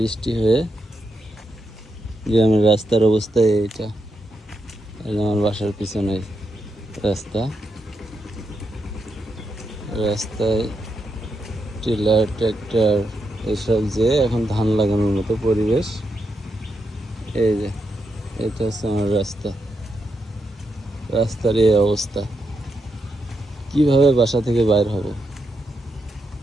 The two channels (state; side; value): normal; both; correlation 0.83